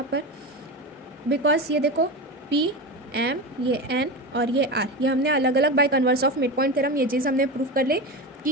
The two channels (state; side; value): normal; both; correlation 0.22